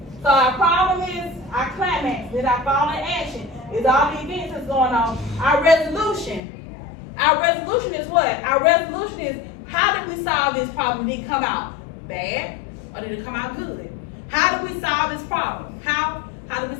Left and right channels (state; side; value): drops out; right; at 6.4 s